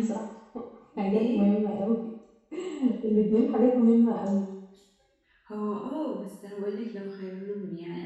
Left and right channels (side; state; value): both; identical; correlation 1.00